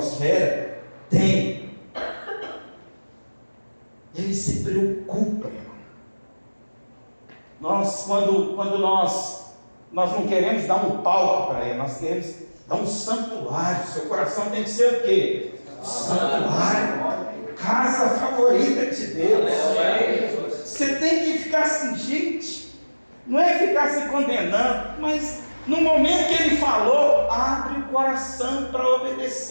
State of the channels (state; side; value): inverted; both; correlation -1.00